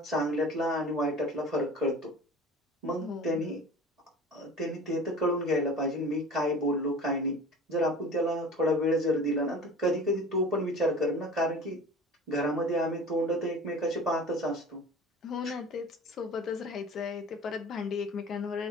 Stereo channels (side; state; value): both; normal; correlation 0.40